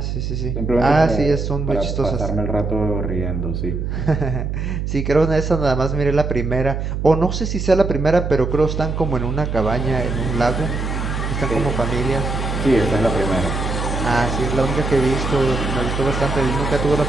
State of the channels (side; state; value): right; noise; hum, 3 dB below the sound